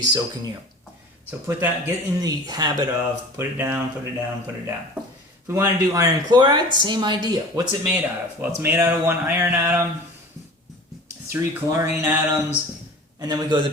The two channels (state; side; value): normal; both; correlation 0.40